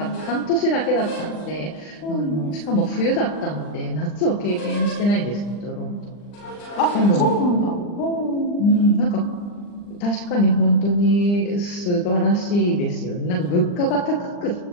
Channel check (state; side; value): late; right; 40 ms